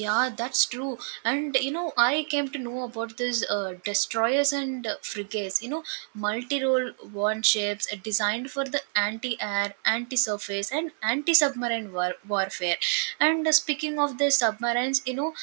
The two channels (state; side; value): silent; left; 57 dB below the other